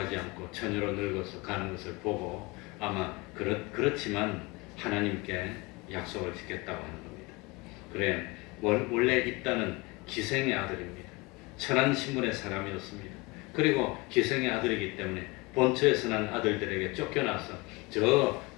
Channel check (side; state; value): right; quieter; 24.5 dB